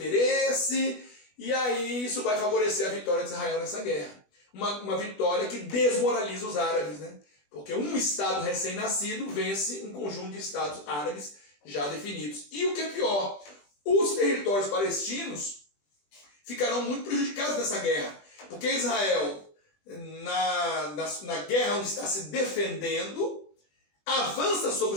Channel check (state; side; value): late; right; 20 ms